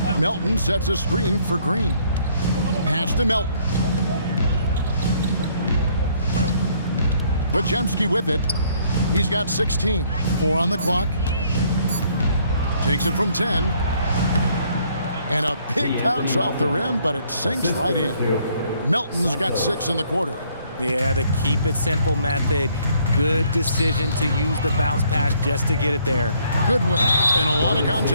Melton sets a screen for Green. Pass to Melton. Podziemski with it. He's got 16. 4 on the clock. Takes it from 10. And a big bounce off the rim, but it sinks right in. Melton's got 6 in the quarter. Yeah, the keep it simple method. Good decision to use the bounce pass just to get it there. Goodwin. And a lot of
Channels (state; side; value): inverted; both; correlation -0.65